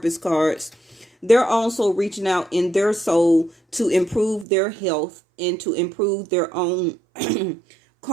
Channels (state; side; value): drops out; left; at 4.5 s